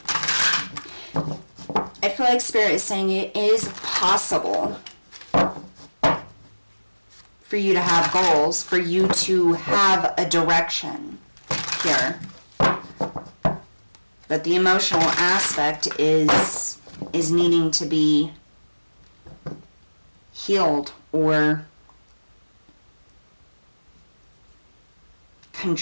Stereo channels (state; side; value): inverted; both; correlation -1.00